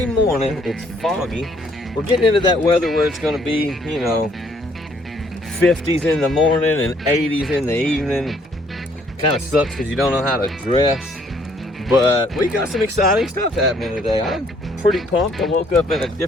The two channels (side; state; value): both; normal; correlation 0.65